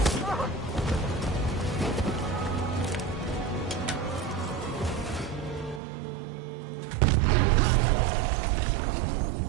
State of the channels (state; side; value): drops out; left; at 5.8 s